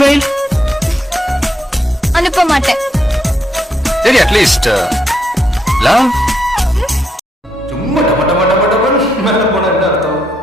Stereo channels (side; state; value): both; normal; correlation 0.78